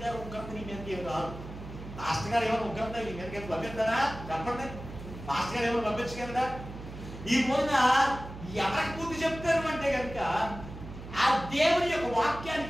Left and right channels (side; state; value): right; noise; hum, 12 dB below the sound